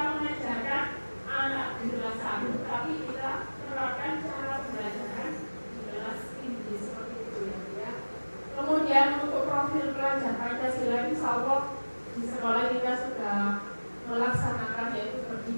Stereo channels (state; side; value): inverted; both; correlation -1.00